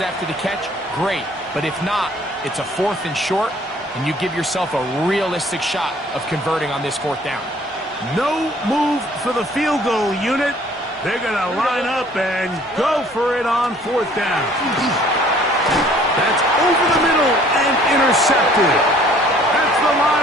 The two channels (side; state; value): both; normal; correlation 0.56